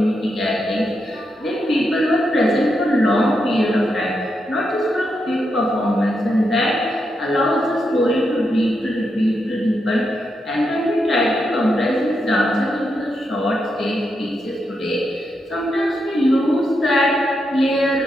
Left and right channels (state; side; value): normal; both; correlation 0.84